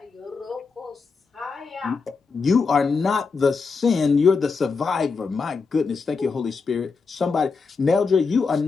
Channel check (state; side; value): quieter; right; 4.8 dB